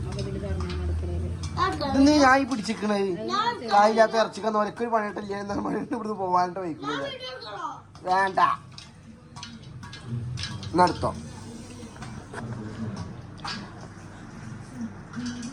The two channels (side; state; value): both; identical; correlation 1.00